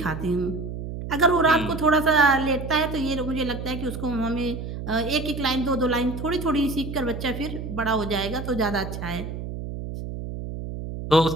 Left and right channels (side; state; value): right; noise; hum, 7 dB below the sound